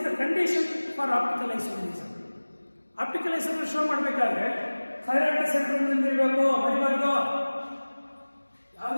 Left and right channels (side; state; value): both; inverted; correlation -1.00